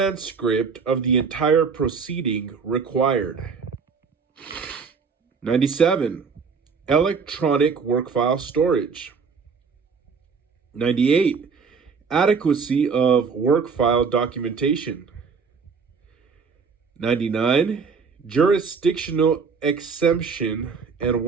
of the entire proceeding required? 97. Electronic work file storage. 98. Adequacy of work file documentation. 99. Jurisdictional exemption and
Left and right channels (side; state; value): left; quieter; 5.4 dB